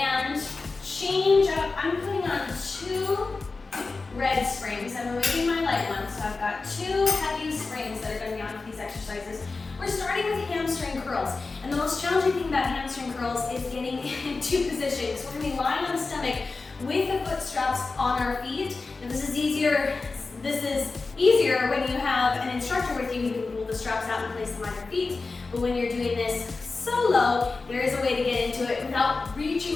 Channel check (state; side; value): quieter; right; 3.9 dB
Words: change up. I'm putting on 2 red springs. I'm removing my light ones, so I've got 2 heavy springs that are gonna be on for these exercises. We're starting with hamstring curls, and the most challenging thing about hamstring curls is getting into position. So we're gonna be lying on the stomach with the foot straps on our feet. And this is easier when you have an instructor with you who can pull the straps out and place them on your feet. But when you're doing this solo, there is a way to get into it without